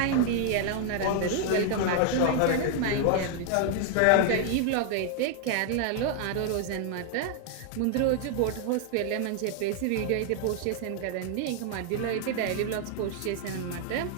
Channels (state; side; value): different; both; correlation 0.00